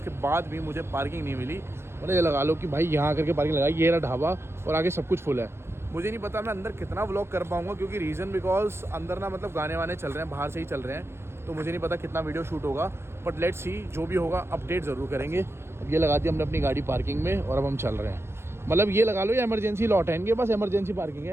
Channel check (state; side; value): late; left; 0.12 ms